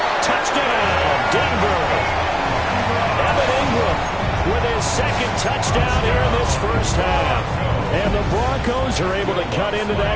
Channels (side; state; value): both; identical; correlation 1.00